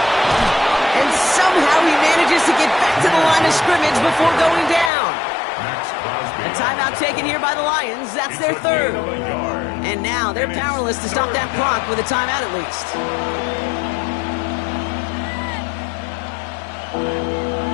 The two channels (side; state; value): right; drops out; at 4.9 s